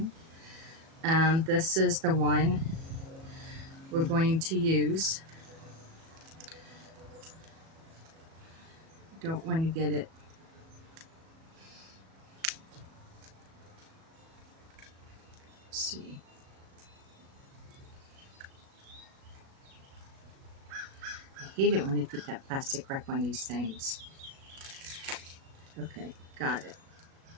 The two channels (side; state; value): left; late; 37 ms